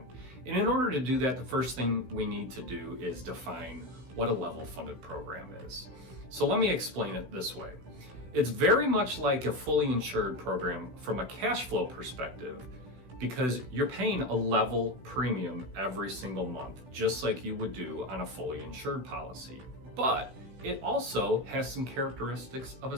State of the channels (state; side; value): late; left; 16 ms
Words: And in order to do that, the first thing we need to do is define what a level funded program is. So let me explain it this way. It's very much like a fully insured program from a cash flow perspective, because you're paying a level premium every single month, just like you would do on a fully insured policy. But it also has some characteristics of a